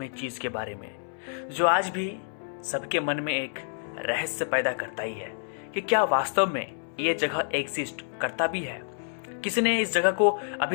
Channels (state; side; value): silent; right; 59 dB below the other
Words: चीज़ के बारे में, जो आज भी सबके मन में एक रहस्य पैदा करता ही है कि क्या वास्तव में ये जगह एग्जिस्ट करता भी है। किसी ने इस जगह को